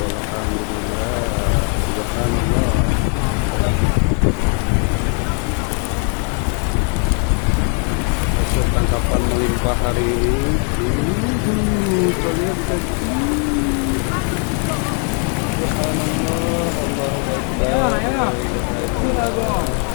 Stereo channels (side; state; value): right; quieter; 38.0 dB